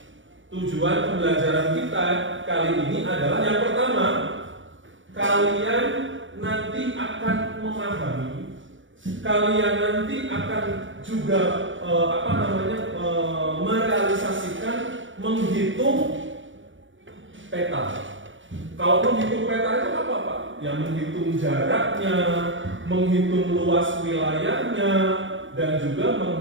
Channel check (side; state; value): left; late; 0.56 ms